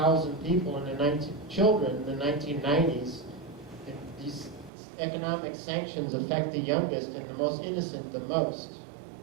people children in the 1990s, these economic sanctions affect the youngest and the most innocent the most.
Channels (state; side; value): drops out; left; at 4.7 s